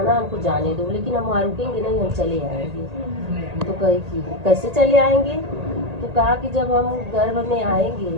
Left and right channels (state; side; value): late; left; 1.8 ms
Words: हमको जाने दो, लेकिन हम वहाँ रुकेंगे नहीं, हम चले आएंगे। तो कही कि कैसे चले आएंगे? तो कहा कि जब हम गर्भ में आएंगे